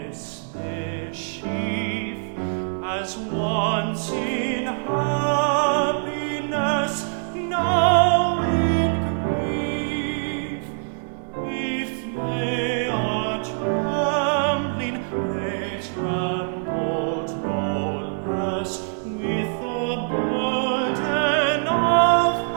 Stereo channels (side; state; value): left; silent; digital silence